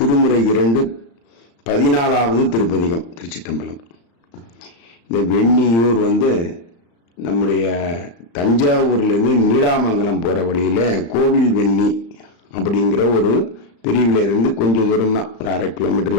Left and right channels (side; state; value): right; late; 35 ms